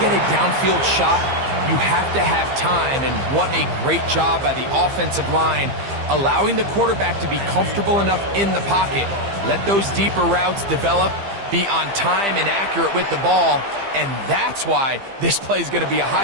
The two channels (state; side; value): late; left; 15 ms